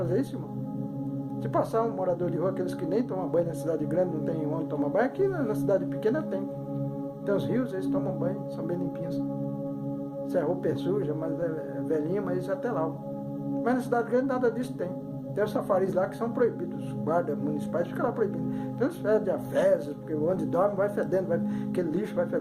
isso, irmão? Se passar um morador de rua, aqueles que nem tomam banho na cidade grande, não tem onde tomar banho, aqui na cidade pequena tem. Tem os rios, eles tomam banho, são bem limpinhos. Se a roupa é suja, mas é velhinha, mas isso é até lá. Mas na cidade grande nada disso tem. Tem os safaris lá que são proibidos. Os guardas municipais ficam lá proibidos. Tem os fedem a fezes, porque onde dorme vai fedendo, aquele lixo vai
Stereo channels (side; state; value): both; identical; correlation 1.00